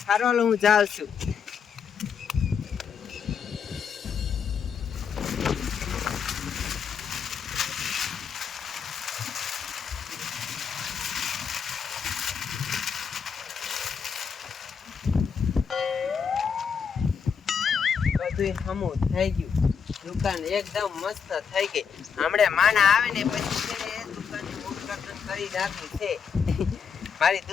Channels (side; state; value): right; quieter; 6.7 dB